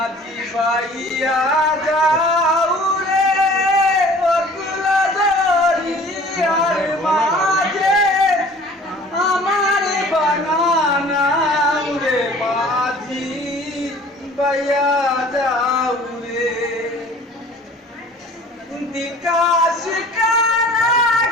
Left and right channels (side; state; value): both; normal; correlation 0.48